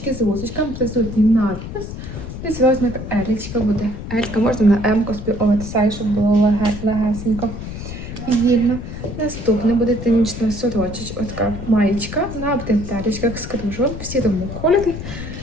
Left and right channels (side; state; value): left; noise; rumble, 9 dB below the sound